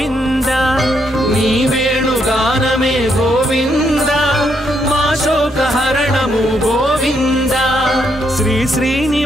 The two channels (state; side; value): normal; both; correlation 0.76